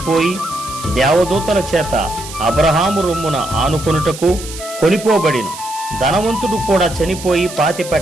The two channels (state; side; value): noise; right; hiss, 13 dB below the sound